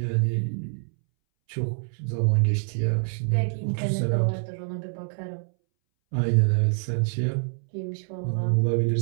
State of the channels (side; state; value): left; silent; 61 dB below the other